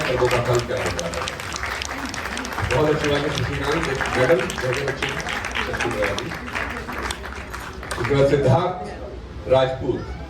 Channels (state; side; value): identical; both; correlation 1.00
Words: कर्मों का फल क्या होता है। बहुत अच्छी बात है शशिकांत, एक मेडल बहुत अच्छी। उसके बाद सिद्धार्थ राजपूत,